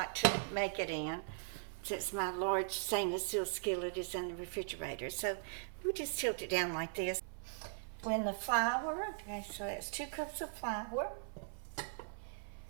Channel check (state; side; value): silent; left; 51 dB below the other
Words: to make it in, since my large stainless steel skillet is in the refrigerator. So we'll just tilt it down like this. Blend the flour. Okay, so that's 2 cups of flour.